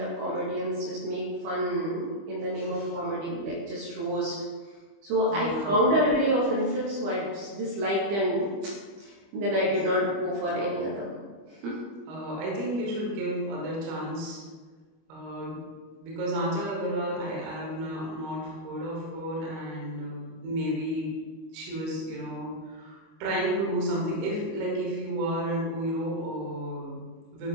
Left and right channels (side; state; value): left; late; 25 ms